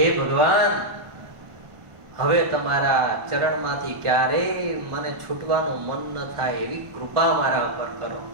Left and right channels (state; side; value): late; left; 1.1 ms